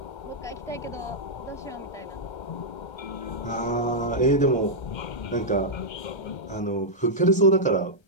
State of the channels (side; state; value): right; late; 1.3 ms